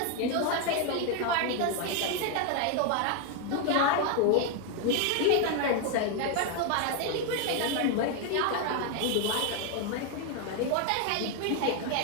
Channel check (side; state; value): both; different; correlation 0.01